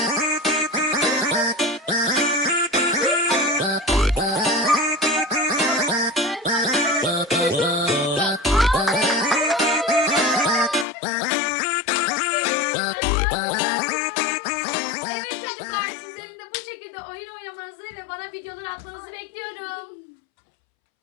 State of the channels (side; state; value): right; drops out; at 10.9 s